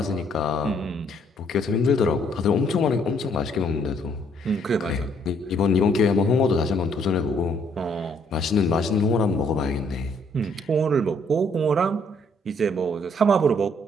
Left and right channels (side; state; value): both; normal; correlation 0.66